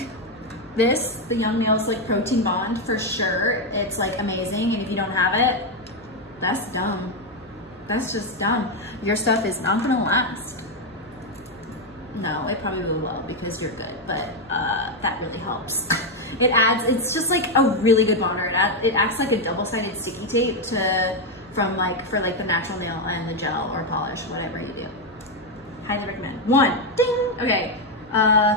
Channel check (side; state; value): left; noise; hum, 29 dB below the sound